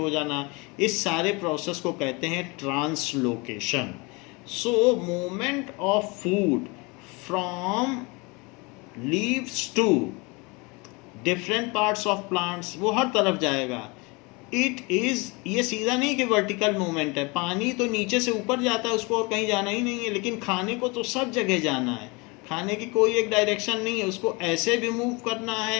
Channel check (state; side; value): quieter; right; 27.3 dB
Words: जाना, इस सारे प्रोसेस को कहते हैं translocation. So movement of food from leaves to different parts of plants, वो हर तरफ जाएगा। इट इज़, ये सीधा नहीं कि वर्टिकल मूवमेंट है, पानी तो नीचे से ऊपर जाता है, उसको और कहीं जाना ही नहीं है, लेकिन खाने को तो सब जगह जाना है। खाने की कोई एक डायरेक्शन नहीं है, उसको ऐसे भी मूव करना